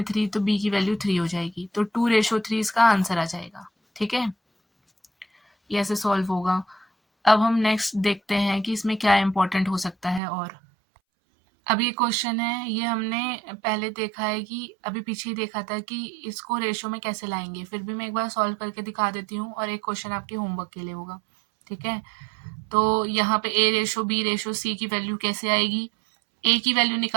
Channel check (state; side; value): drops out; left; at 10.2 s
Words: 3 तो b की वैल्यू 3 हो जाएगी, तो 2:3 इसका आंसर आ जाएगा। ठीक है, ये ऐसे सॉल्व होगा। अब हम नेक्स्ट देखते हैं कि इसमें क्या इम्पोर्टेंट हो सकता है। और अब ये क्वेश्चन है, ये हमने पहले देखा है कि अभी पीछे ही देखा था कि इसको रेशो में कैसे लाएंगे, फिर भी मैं एक बार सॉल्व करके दिखा देती हूँ और एक क्वेश्चन आपके होमवर्क के लिए होगा। ठीक है, तो यहाँ पे a ratio b ratio c की वैल्यू कैसे आएगी। a की वैल्यू